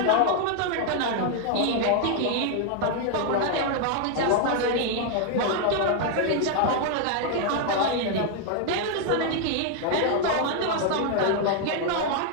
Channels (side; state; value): both; different; correlation 0.00